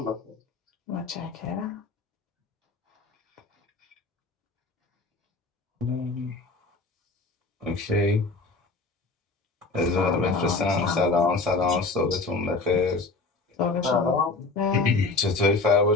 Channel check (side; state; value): right; quieter; 3.7 dB